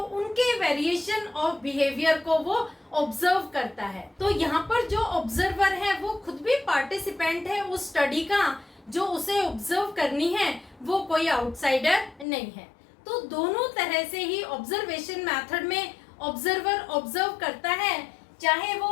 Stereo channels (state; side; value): drops out; right; at 12.2 s